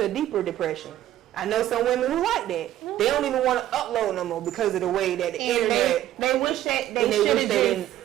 a deeper depression. I know some women who like that. They don't even want to upload no more because of the way that the internet... They wish that they should have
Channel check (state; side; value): quieter; left; 13.0 dB